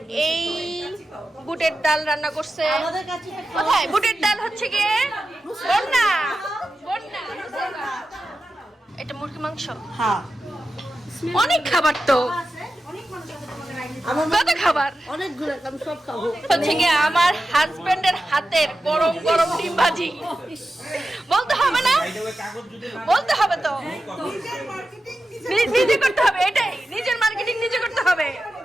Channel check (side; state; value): both; normal; correlation 0.92